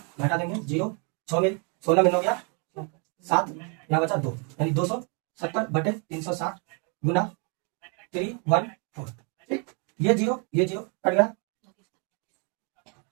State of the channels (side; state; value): left; quieter; 36.1 dB